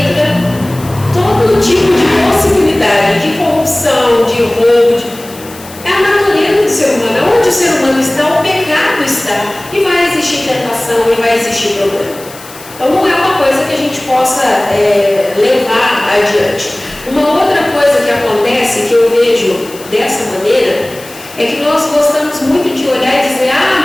insalubridade, de corrupção, de roubo, é a natureza do ser humano. Onde o ser humano está, o pecado está. E vai existir tentação, e vai existir problema. Então não é uma coisa que a gente possa levar adiante. Uma outra coisa que acontece, que eu vejo dessa maneira, é que nós gostamos muito de olhar e dizer,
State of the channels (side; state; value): left; noise; hiss, 18 dB below the sound